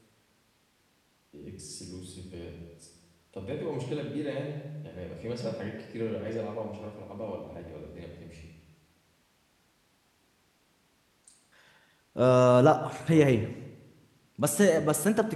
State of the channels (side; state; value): both; identical; correlation 1.00